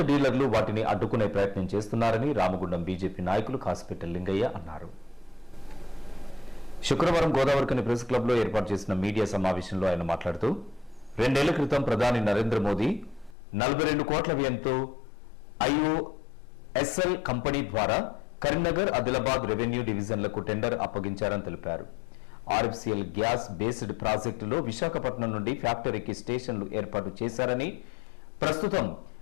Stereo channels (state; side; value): drops out; right; at 13.4 s